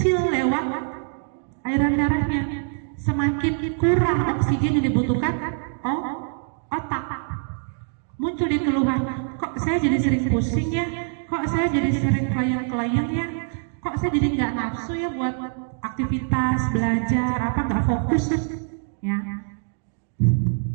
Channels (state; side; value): silent; left; 63 dB below the other